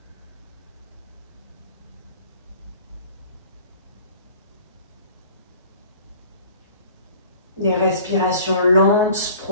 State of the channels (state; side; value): inverted; both; correlation -0.48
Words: Des respirations lentes,